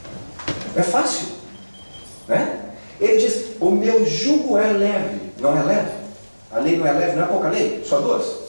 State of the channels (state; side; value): inverted; both; correlation -1.00